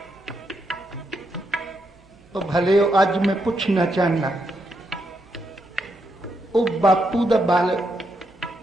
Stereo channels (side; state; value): right; noise; hum, 29 dB below the sound